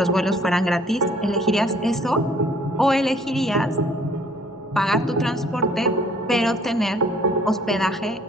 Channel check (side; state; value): both; normal; correlation 0.58